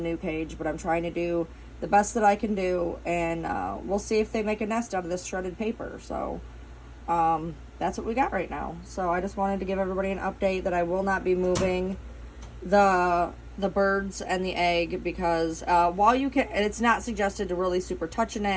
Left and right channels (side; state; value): both; identical; correlation 1.00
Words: cage. But I'm trying to do the best that I can do, and we'll see if they make a nest out of this shredded paper. So that's what we got right now. So I just wanted to give everybody an update that I will not be moving the birds and the egg, because while you can, it's not suggested to really super touch an